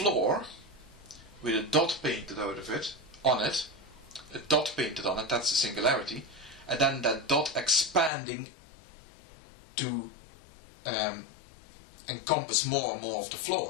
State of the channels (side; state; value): right; drops out; at 8.1 s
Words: with a dot painted out of it, on it, a dot painted on it, that's the singularity, and then that dot expanding to encompass more and more of the